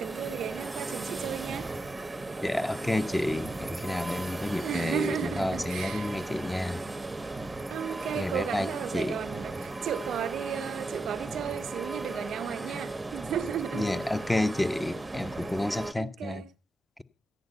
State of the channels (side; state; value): both; normal; correlation 0.87